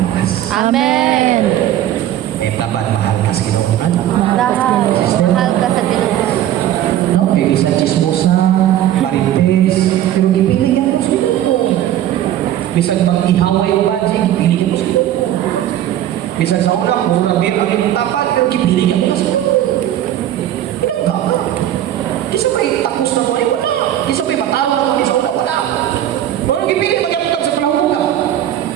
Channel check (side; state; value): left; quieter; 12.0 dB